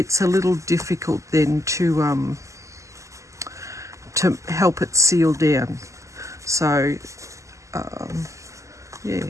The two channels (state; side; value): late; left; 0.15 ms